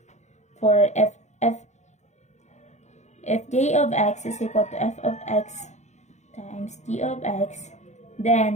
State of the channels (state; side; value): late; right; 0.33 ms